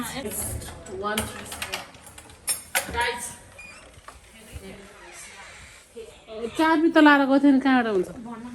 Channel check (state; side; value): identical; both; correlation 1.00